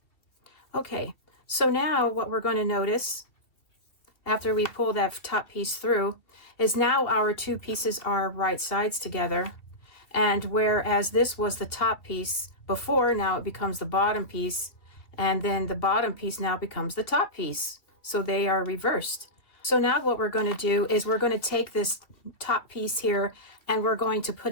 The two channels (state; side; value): late; right; 2.5 ms